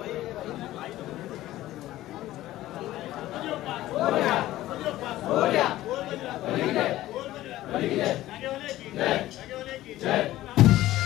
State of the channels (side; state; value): right; quieter; 15.4 dB